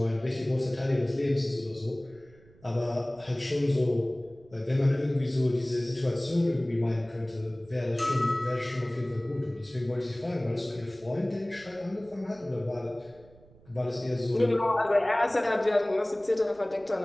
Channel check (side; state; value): right; noise; rumble, 26 dB below the sound